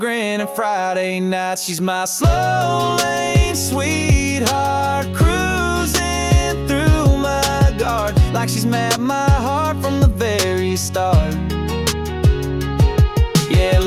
and Friday nights. She's my slow lane sweetheart, cruising through my garden like she's mapped my heart from the very start. Yeah,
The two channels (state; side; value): identical; both; correlation 1.00